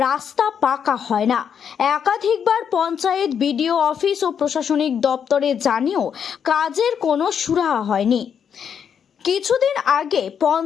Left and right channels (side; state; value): right; quieter; 7.7 dB